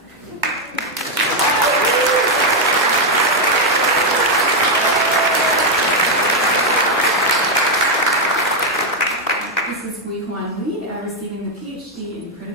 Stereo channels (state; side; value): normal; both; correlation 0.02